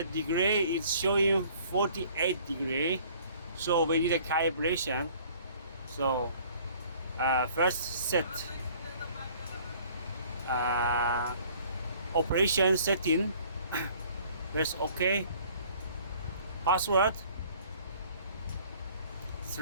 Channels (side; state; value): both; inverted; correlation -0.54